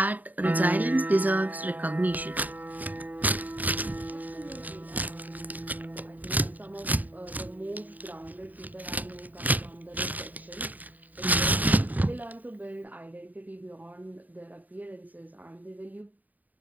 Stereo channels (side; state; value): left; late; 0.081 ms